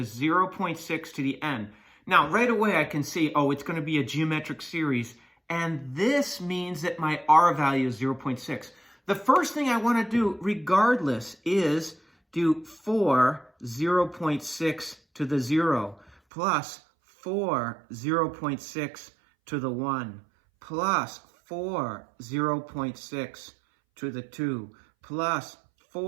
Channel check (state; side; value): drops out; left; at 16.2 s